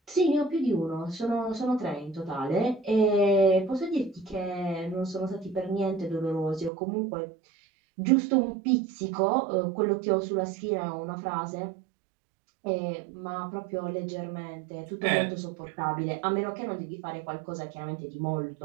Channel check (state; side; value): drops out; left; at 6.7 s